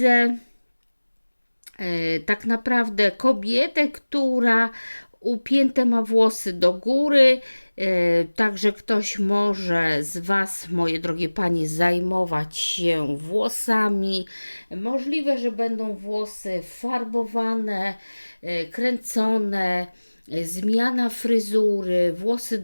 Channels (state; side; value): inverted; both; correlation -1.00